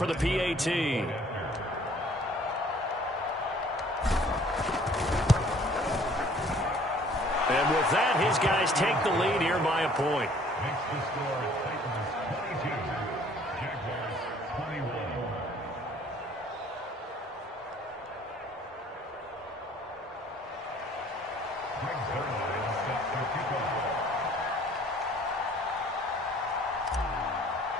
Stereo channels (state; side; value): normal; both; correlation 0.56